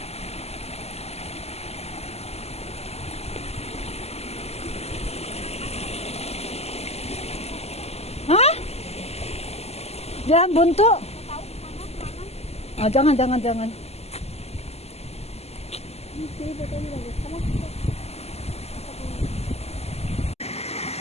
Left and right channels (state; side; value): late; right; 0.30 ms